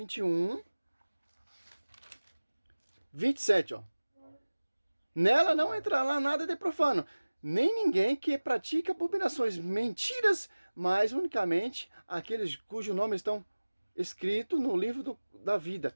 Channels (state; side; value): inverted; both; correlation -1.00